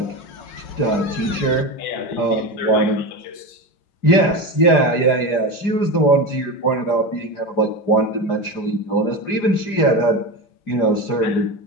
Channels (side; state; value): right; late; 4.9 ms